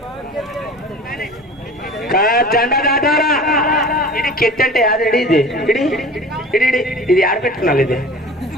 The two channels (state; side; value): normal; both; correlation 0.39